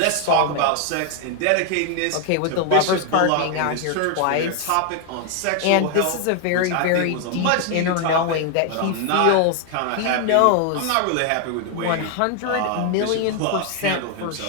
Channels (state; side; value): different; both; correlation 0.00